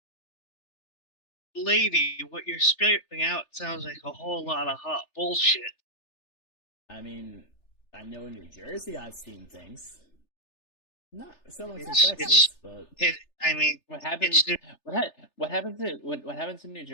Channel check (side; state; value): right; late; 3.3 ms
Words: lady, what you're spitting out sounds like a whole lot of hot bullshit. I mean, I know in New Jersey I've seen things. Not so much in It's- Texas, but I mean, What happens? it's What happens in what happens in New